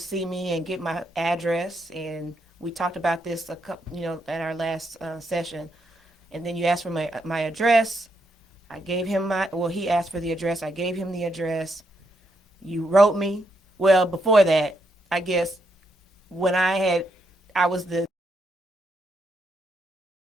me and get my address, and we talked about this at our last session. And then you asked for my address. I gave him he asked for the address. I gave him the address. You wrote me. Well, before that, I guess when I was the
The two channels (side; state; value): both; normal; correlation 0.79